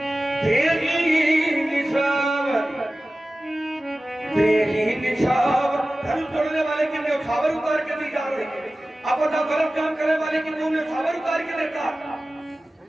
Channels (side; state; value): both; normal; correlation 0.96